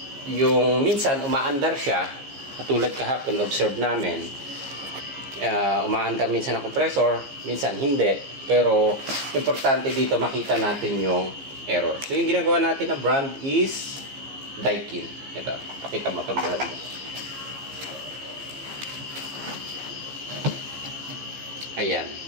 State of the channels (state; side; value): late; left; 15 ms